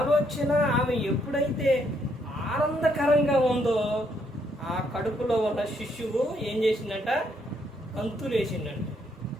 ఆమె ఎప్పుడైతే ఆనందకరంగా ఉందో ఆ కడుపులో ఉన్న శిశువు ఏం చేసిందంట, గంతులేసిందంట.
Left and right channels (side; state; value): both; normal; correlation 0.72